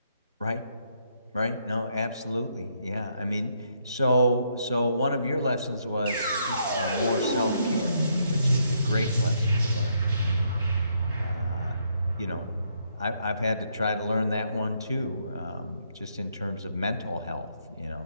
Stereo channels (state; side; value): inverted; both; correlation -0.74